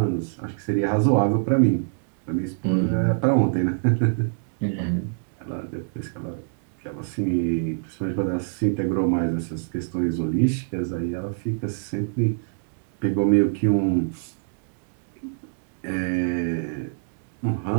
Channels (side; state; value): left; silent; digital silence